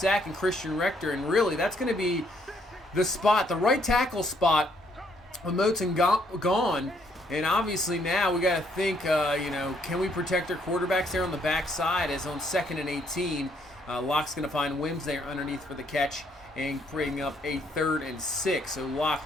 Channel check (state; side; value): normal; both; correlation 0.69